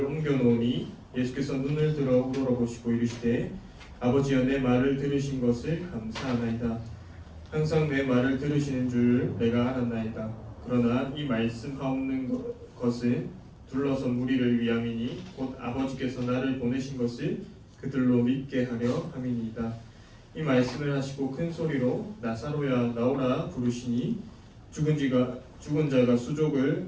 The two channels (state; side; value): identical; both; correlation 1.00